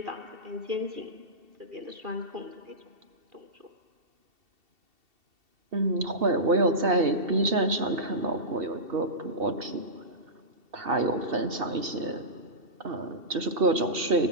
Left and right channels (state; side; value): late; left; 2.7 ms